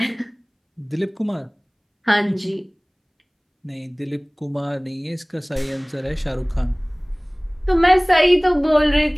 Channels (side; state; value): both; identical; correlation 1.00